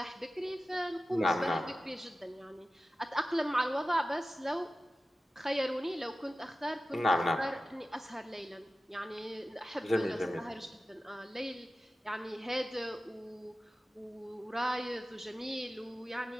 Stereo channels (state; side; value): normal; both; correlation 0.95